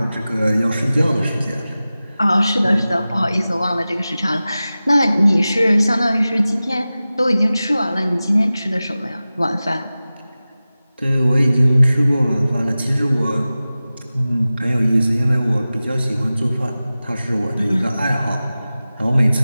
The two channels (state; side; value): inverted; both; correlation -0.96